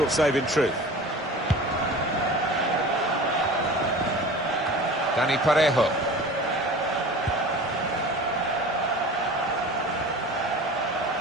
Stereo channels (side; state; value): both; normal; correlation 0.38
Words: save in truth. Dani Parejo.